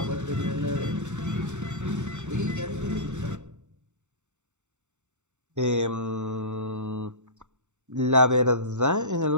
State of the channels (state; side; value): late; left; 0.84 ms